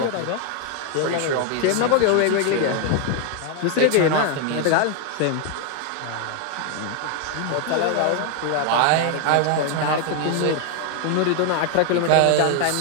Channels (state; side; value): different; both; correlation 0.01